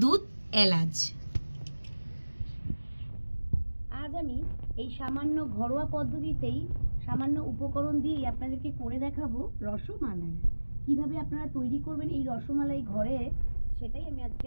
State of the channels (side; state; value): both; inverted; correlation -1.00